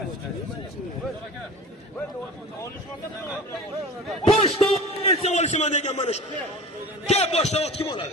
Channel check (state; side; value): normal; both; correlation 0.37